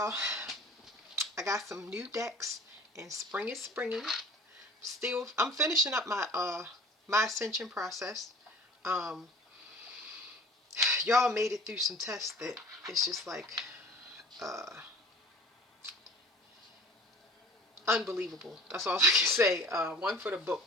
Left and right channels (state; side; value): normal; both; correlation 0.44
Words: I got some new decks, and spring is springing. Still, I'm finishing up my ascension process. Um, y'all made it through some tests that it's just like uh, unbelievable. That's all I can say. One for the